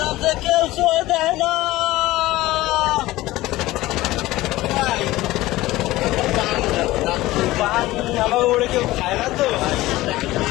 যে কেউ ছয় দেয় না। আমার ওরে কেউ খায় না তো।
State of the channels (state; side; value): quieter; right; 17.7 dB